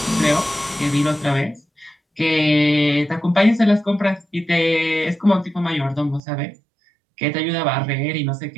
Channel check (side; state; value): left; drops out; at 6.2 s